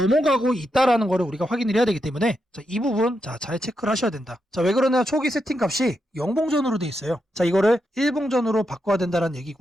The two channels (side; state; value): both; normal; correlation 0.84